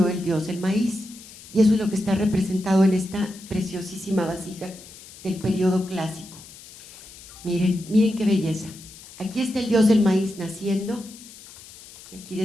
el dios del maíz. Y eso es lo que está representado en esta preciosísima vasija del periodo clásico. Miren qué belleza. Aquí está el dios del maíz naciendo, y aquí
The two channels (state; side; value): noise; left; hiss, 18 dB below the sound